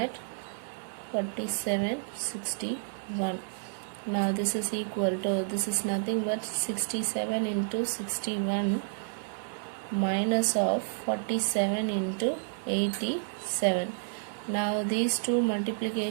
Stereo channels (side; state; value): left; silent; digital silence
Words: 47, 61. Now this is equal to, this is nothing but 67 into 61 minus of 47 into 87. Now these two